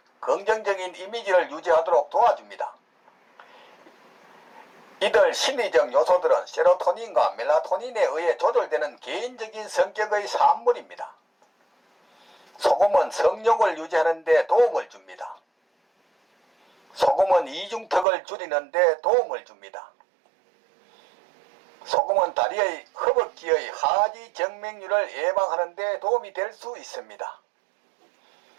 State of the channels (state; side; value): drops out; left; at 18.1 s